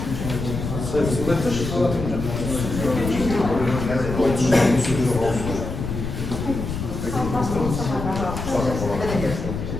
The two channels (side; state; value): left; noise; rumble, 5 dB below the sound